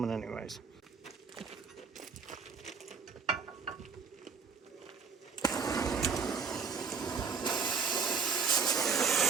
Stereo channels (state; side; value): quieter; left; 5.7 dB